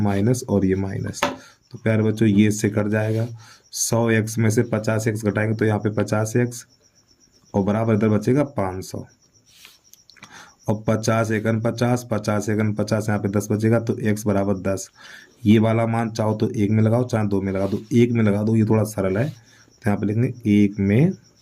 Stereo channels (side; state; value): both; identical; correlation 1.00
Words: और ये माइनस, तो प्यारे बच्चों ये इससे कट जाएगा। 100x में से 50x घटाएंगे तो यहाँ पे 50x और बराबर इधर बचेगा 500 और 50 एकन 50, 50 एकन 50, यहाँ पे 10 बचेगा। तो x बराबर 10। ये वाला मान चाहो तो 1 में लगाओ, चाहे 2 में लगा दो। 1 में लगा दो, ये थोड़ा सरल है। तो यहाँ पे लिखेंगे 1 में